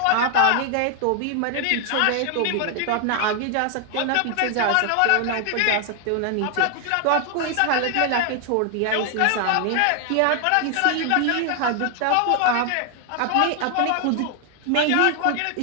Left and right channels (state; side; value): different; both; correlation 0.00